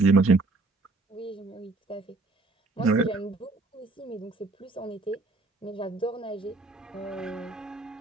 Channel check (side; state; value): left; quieter; 3.4 dB